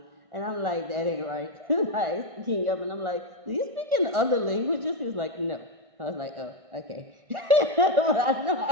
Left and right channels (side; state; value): left; late; 1.6 ms